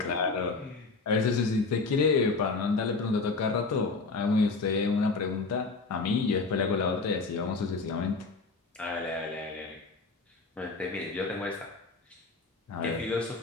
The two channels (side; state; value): right; quieter; 4.0 dB